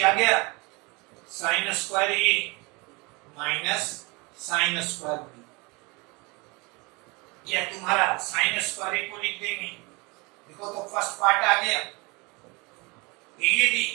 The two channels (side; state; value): left; quieter; 27.2 dB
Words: गया, साइन स्क्वायर ए माइनस साइन स्क्वायर बी, या तुम्हारा साइन स्क्वायर ए को लिख देंगे, देखो तो फर्स्ट पार्ट आ गया, यदि